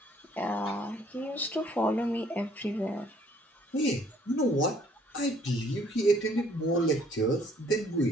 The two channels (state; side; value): normal; both; correlation 0.61